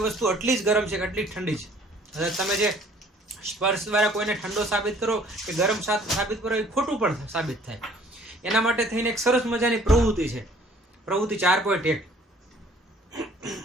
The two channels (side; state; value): both; normal; correlation 0.56